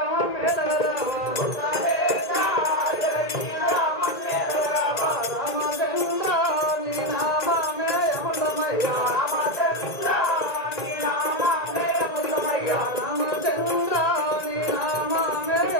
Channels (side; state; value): right; late; 1.9 ms